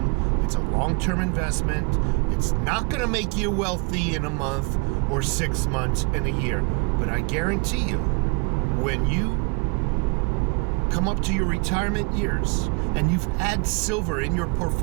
It's a long-term investment. It's not going to make you wealthy in a month or 6 months in a year. But I guarantee you, when you come up to your retirement years and you've had silver in your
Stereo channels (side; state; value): left; quieter; 32.4 dB